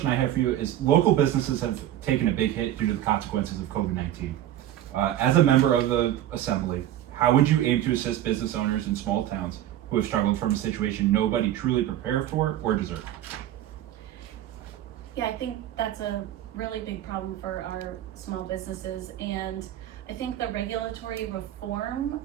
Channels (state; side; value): quieter; left; 12.5 dB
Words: I have for you is, local businesses have taken a big hit due to the consequences of COVID-19. As a member of the Assembly, how would you aim to assist business owners in small towns who have struggled from a situation nobody truly prepared for or deserved? Yeah, I think that's a really big problem for our small businesses, and I think the regulatory reform